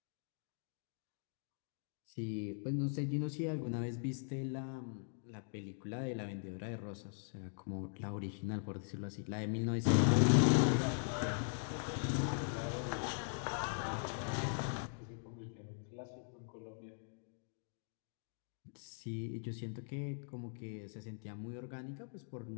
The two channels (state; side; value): silent; right; digital silence